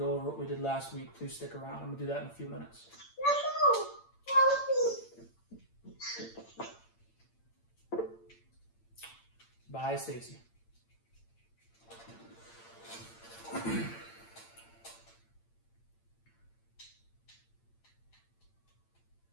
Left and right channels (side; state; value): right; late; 8.8 ms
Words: over what we did last week, please stick around. I'm going to do that in a few minutes. Bye, Stacy.